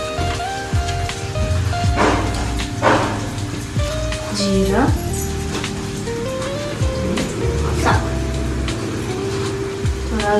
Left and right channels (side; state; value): both; identical; correlation 1.00